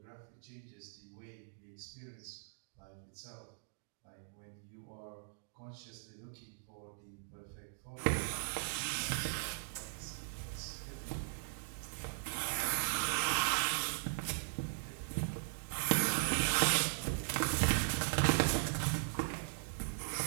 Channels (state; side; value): silent; left; digital silence